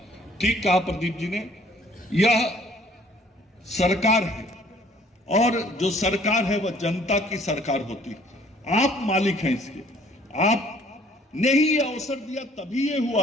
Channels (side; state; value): both; normal; correlation 0.58